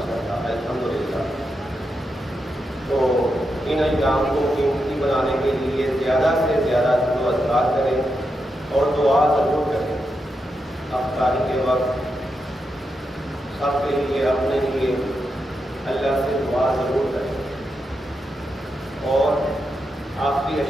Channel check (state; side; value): normal; both; correlation 0.85